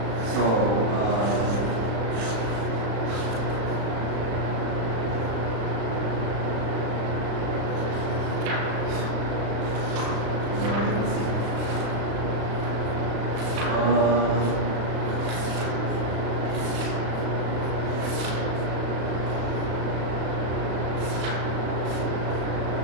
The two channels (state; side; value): late; left; 35 ms